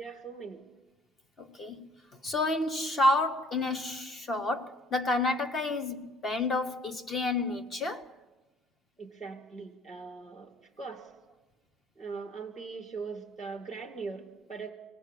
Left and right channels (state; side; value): normal; both; correlation 0.57